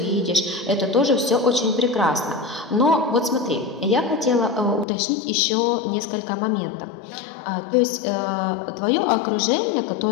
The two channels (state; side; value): drops out; right; at 4.9 s